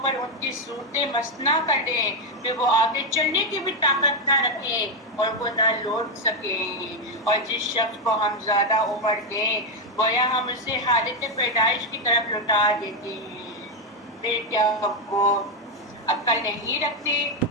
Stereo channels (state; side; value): normal; both; correlation 0.04